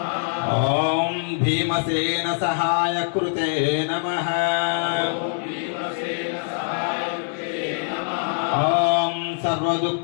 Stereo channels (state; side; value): silent; right; digital silence